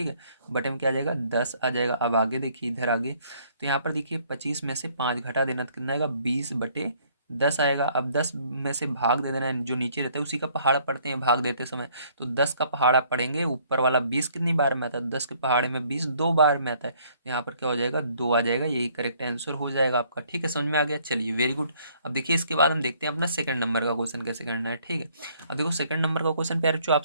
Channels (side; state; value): both; inverted; correlation -0.63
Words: है। बटे में क्या आ जाएगा, 10 आ जाएगा। अब आगे देखिए, इधर आगे तो यहाँ पर देखिए 25 में से 5 घटा देना तो कितना आएगा, 20/10 आएगा। अब 10 में से भाग दे देना है, जो नीचे रहता है उसी का पहाड़ा पढ़ते हैं भाग देते समय। तो 10 का पहाड़ा पढ़ेंगे, ऊपर वाला 20 कितनी बार में आता है, 10 के पहाड़े में 20 2 बार में आता है, तो यहाँ पर क्या हो जाएगा, 2 आ जाएगा, यही करेक्ट आंसर हो जाएगा आपका, ठीक है। समझ में आ गया, चलिए वेरी गुड। अब देखिए इसके बाद हम देखते हैं अपना सेकंड नंबर का क्वेश्चन कैसे करना है, ठीक है। अब देखो सेकंड नंबर का क्वेश्चन प्यारे जो आप